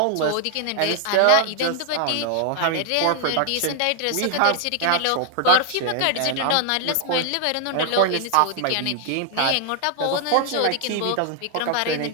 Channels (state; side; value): different; both; correlation 0.00